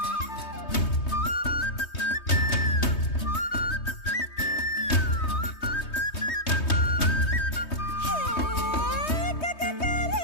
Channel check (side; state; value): right; late; 3.2 ms